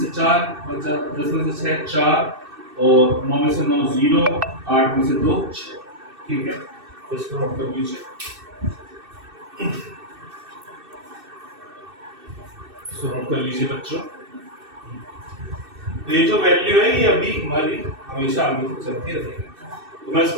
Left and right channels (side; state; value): left; late; 2.6 ms